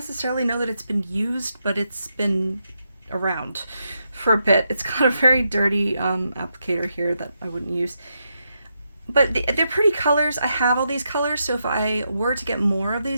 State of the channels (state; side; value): inverted; both; correlation -0.83